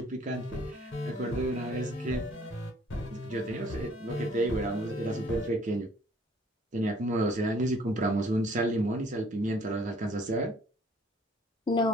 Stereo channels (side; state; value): both; normal; correlation 0.59